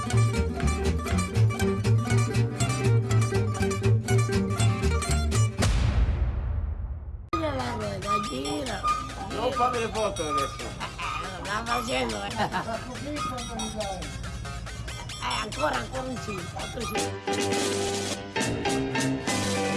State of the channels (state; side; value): identical; both; correlation 1.00